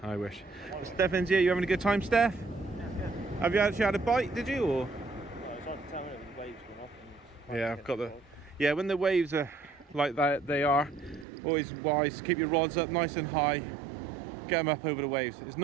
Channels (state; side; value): drops out; left; at 11.2 s